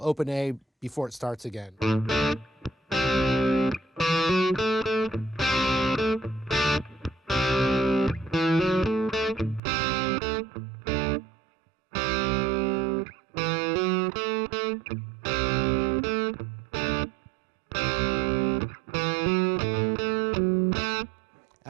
open A before it starts again.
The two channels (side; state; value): left; drops out; at 9.6 s